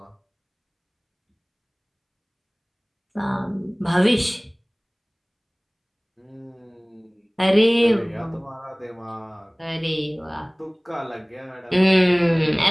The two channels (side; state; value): both; identical; correlation 1.00